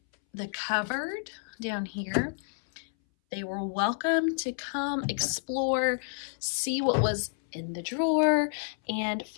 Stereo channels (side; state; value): right; silent; 58 dB below the other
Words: the cupboard down here. They were welcome to come explore, see what was in the drawer, and